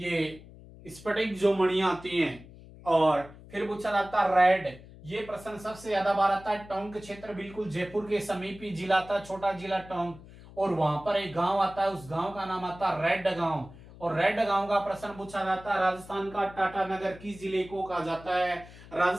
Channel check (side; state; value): left; noise; hum, 19 dB below the sound